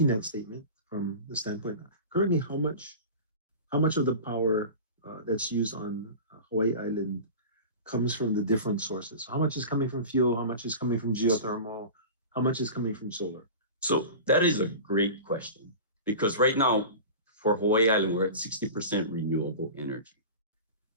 that statement from the standpoint. Currently, how much of the power that's used on Hawaii Island comes from the different sources? How much is coming from fuel? How much is coming from geothermal? How much is coming from solar? So that is a great question, because right now for Hawaii Island, we're at 60% renewable energy.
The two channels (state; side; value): inverted; both; correlation -0.33